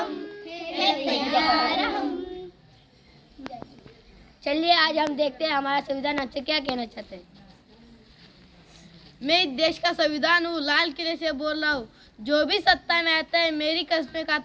है तैयार हम। चलिए, आज हम देखते हैं हमारा संविधान हमसे क्या कहना चाहते हैं। मैं इस देश का संविधान हूँ, लाल किले से बोल रहा हूँ। जो भी सत्ता में आता है मेरी कस्में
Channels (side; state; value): both; identical; correlation 1.00